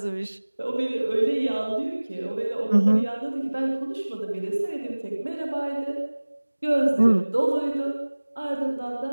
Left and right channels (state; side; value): inverted; both; correlation -1.00